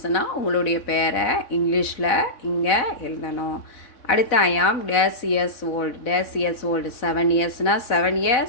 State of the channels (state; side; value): late; right; 4.0 ms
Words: உங்களுடைய பேரை இங்கிலீஷில் இங்கே எழுதணும். அடுத்து I am dash years old. Dash years old 7 இயர்ஸ்னால் 7